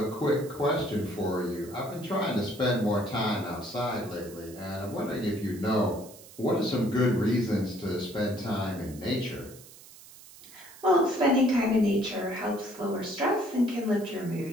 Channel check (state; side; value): noise; right; hiss, 20 dB below the sound